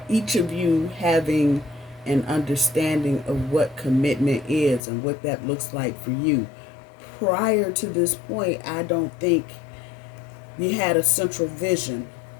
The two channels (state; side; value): drops out; right; at 4.8 s